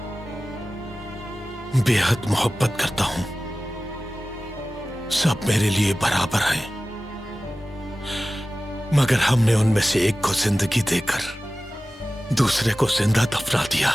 बेहद मोहब्बत करता हूं। सब मेरे लिए बराबर हैं, मगर हमने उनमें से एक को जिंदगी देकर दूसरे को जिंदा दफना दिया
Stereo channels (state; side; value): normal; both; correlation 0.96